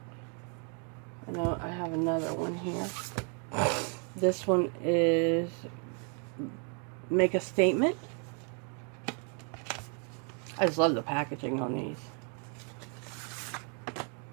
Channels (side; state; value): left; quieter; 39.9 dB